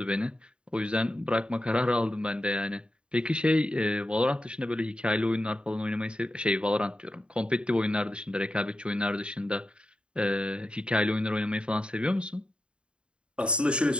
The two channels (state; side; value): late; left; 0.054 ms